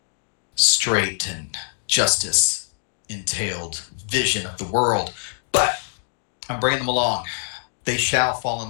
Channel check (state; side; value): silent; right; digital silence